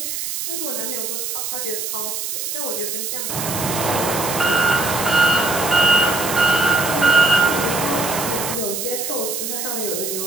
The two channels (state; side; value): noise; right; hiss, 4 dB below the sound